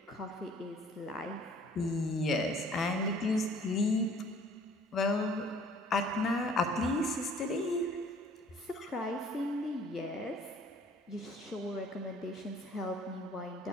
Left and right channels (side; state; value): both; normal; correlation 0.55